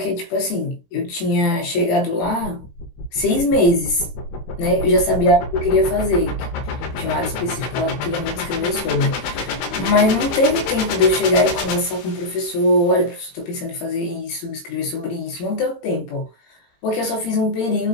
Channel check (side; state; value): right; late; 16 ms